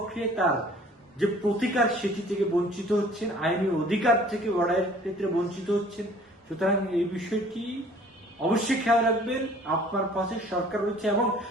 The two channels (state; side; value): normal; both; correlation 0.52